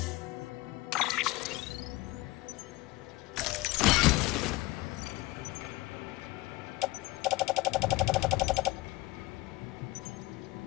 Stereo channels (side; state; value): right; quieter; 20.9 dB